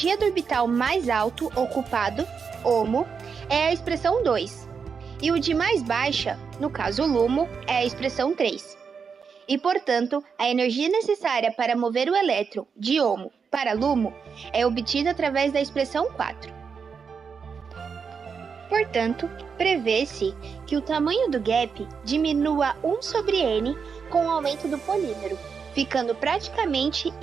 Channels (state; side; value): quieter; left; 6.0 dB